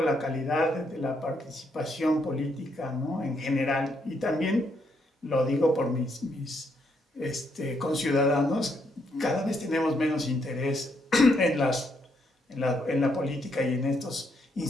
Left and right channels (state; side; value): normal; both; correlation 0.75